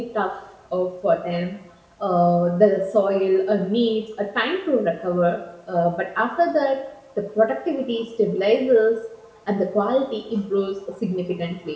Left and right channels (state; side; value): identical; both; correlation 1.00